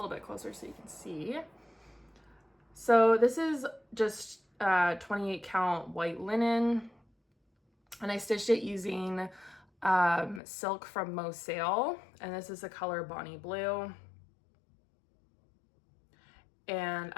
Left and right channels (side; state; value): right; drops out; at 10.4 s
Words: bit closer so you can see. So this is just 28 count white linen, and I stitched it using silk from Mo Sale, and this is the color Bonnie Blue. And